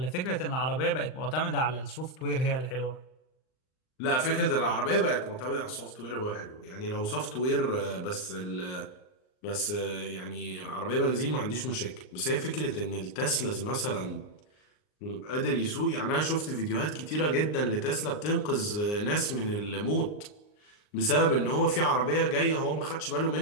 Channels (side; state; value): right; late; 39 ms